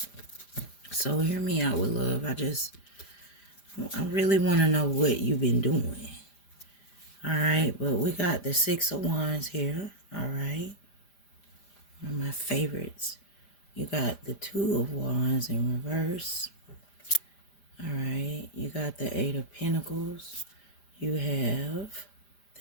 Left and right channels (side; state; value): right; late; 5.0 ms